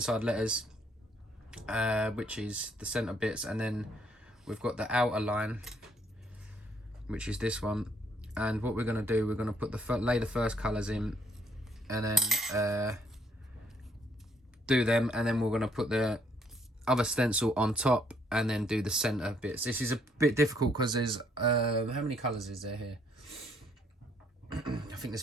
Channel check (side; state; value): both; normal; correlation 0.67